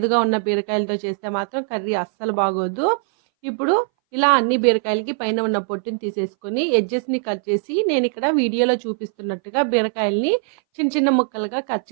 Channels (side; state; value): left; silent; 61 dB below the other